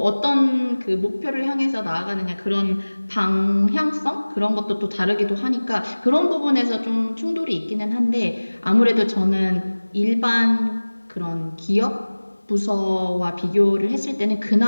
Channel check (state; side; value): inverted; both; correlation -1.00